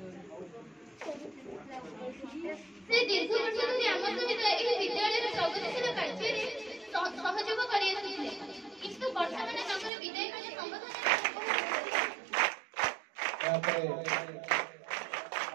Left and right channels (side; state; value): left; drops out; at 9.9 s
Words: ସେ ଦୀର୍ଘ ବର୍ଷ ଧରି ଆମ ସହିତ ଏହି ବିଦ୍ୟାଳୟର ପ୍ରଗତିଶୀଳ କାର୍ଯ୍ୟରେ ସହଯୋଗ କରିଆସୁଥିଲେ କିନ୍ତୁ ବର୍ତ୍ତମାନ ତାଙ୍କର ବିଦାୟ ବେଳ ସମ୍ବୋଧନ